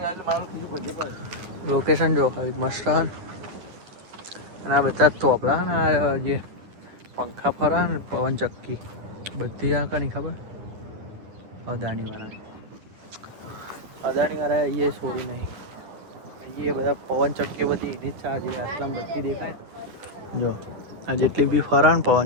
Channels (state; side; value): late; left; 10 ms